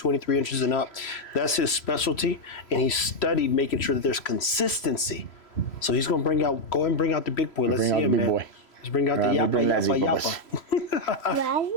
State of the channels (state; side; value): late; right; 3.0 ms